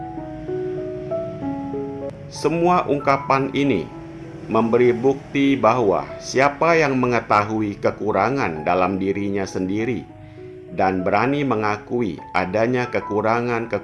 Semua ungkapan ini memberi bukti bahwa siapa yang mengetahui kekurangan dalam dirinya sendiri dan berani mengakui adanya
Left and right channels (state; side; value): identical; both; correlation 1.00